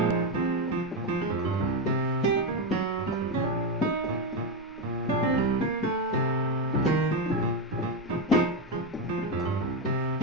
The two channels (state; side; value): normal; both; correlation 0.11